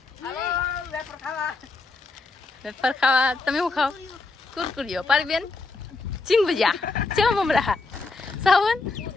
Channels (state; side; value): quieter; right; 3.7 dB